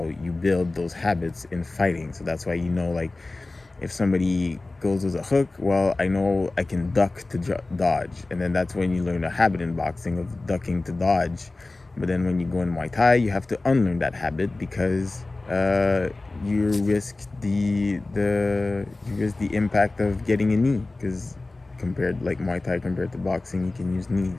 you build those habits in fighting. So that's why you know, like, if somebody goes with a hook, well, I know I can duck to dodge, and then that's when you learn a habit in boxing of ducking to dodge. But then when you go in Muay Thai, you have to unlearn that habit because you risk the impact of getting a knee, because compared like Muay Thai compared to boxing, you can use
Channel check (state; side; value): quieter; right; 3.2 dB